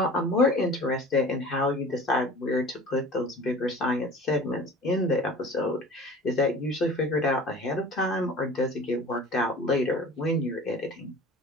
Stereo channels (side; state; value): both; normal; correlation 0.42